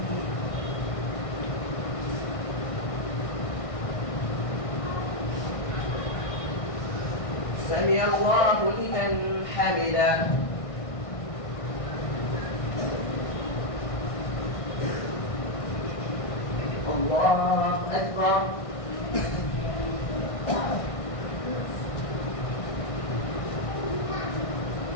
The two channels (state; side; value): late; right; 1.6 ms